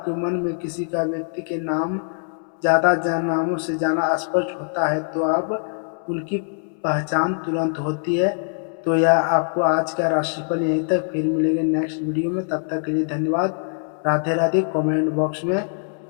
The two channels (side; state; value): right; silent; 64 dB below the other